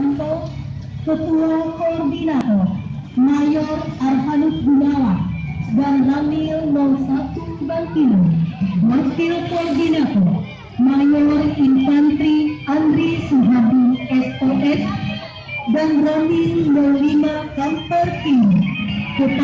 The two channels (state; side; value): identical; both; correlation 1.00